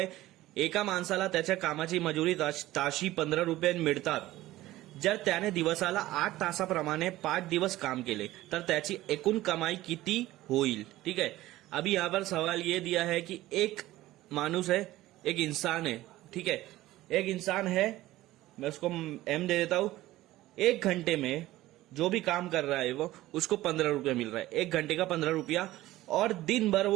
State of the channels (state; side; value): quieter; left; 16.3 dB